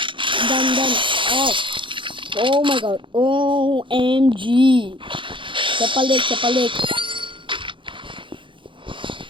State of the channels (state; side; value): late; left; 0.24 ms